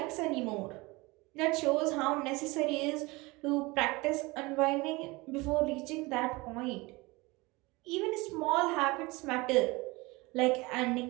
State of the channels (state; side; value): quieter; left; 23.6 dB